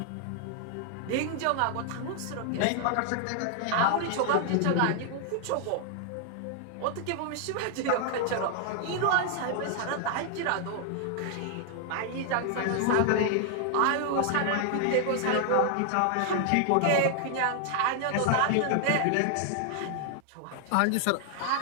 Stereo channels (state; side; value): different; both; correlation 0.00